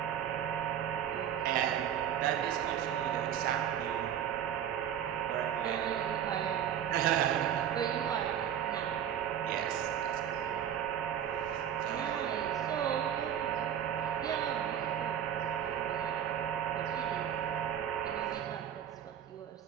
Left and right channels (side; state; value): left; quieter; 9.7 dB